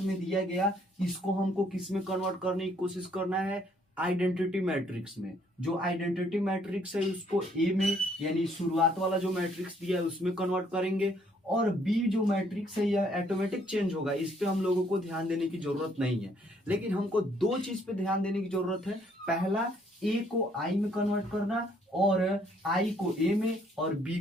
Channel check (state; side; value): normal; both; correlation 0.66